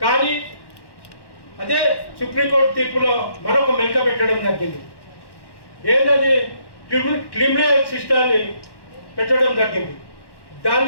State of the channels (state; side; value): late; right; 1.1 ms